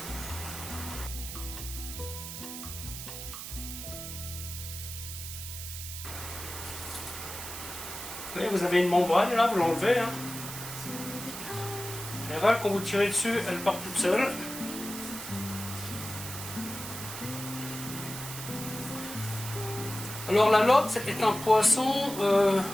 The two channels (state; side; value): noise; right; hiss, 9 dB below the sound